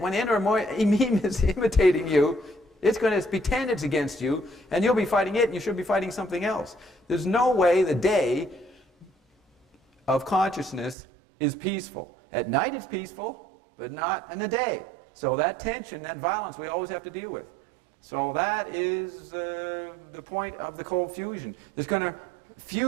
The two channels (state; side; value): drops out; left; at 11.0 s